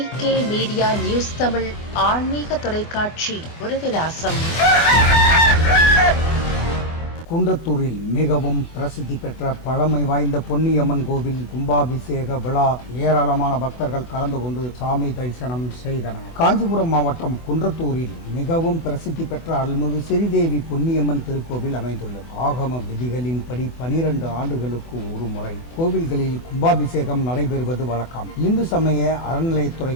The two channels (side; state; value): right; late; 24 ms